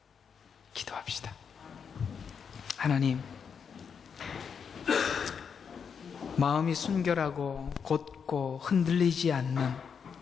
기도합시다. 하나님, 마음이 순결하고 곧고 흔들리지 않는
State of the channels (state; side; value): quieter; right; 6.5 dB